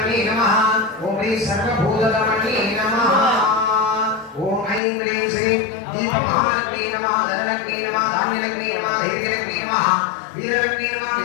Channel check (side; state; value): right; drops out; at 4.8 s